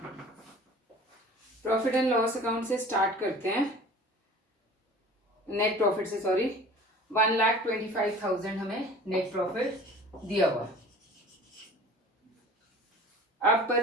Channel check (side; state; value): both; normal; correlation 0.44